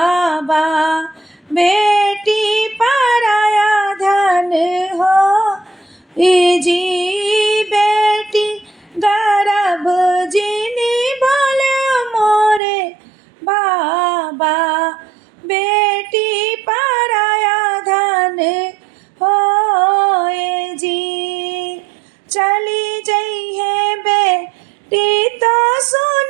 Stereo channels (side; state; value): left; drops out; at 12.6 s